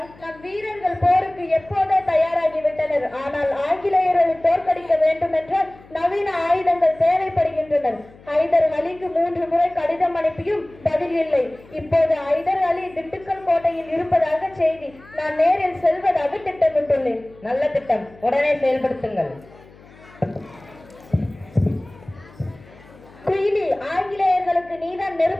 நம் வீரர்கள் போருக்கு எப்போதே தயாராகிவிட்டனர். ஆனால் ஆங்கிலேயர்களை தோற்கடிக்க வேண்டும் என்றால் நவீன ஆயுதங்கள் தேவைப்படுகின்றனர். ஹைதர் அலிக்கு 3 முறை கடிதம் அனுப்பியும் பதில் இல்லை. இப்போது ஹைதர் அலி திண்டுக்கல் கோட்டையில் இருப்பதாக செய்தி. நான் நேரில் செல்வதாக திட்டமிட்டுள்ளேன். நல்ல திட்டம், உடனே செயல்படுத்துங்கள். குயிலி, ஆங்கிலேயர்களுக்கு நீதான்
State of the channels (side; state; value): left; noise; hum, 24 dB below the sound